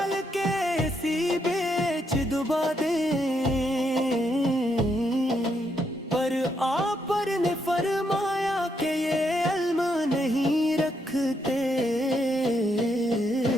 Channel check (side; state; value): both; normal; correlation 0.77